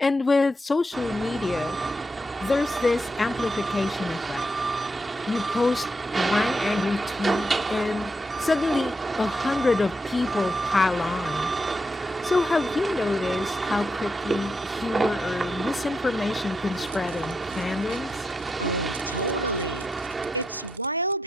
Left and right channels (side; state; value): both; normal; correlation 0.83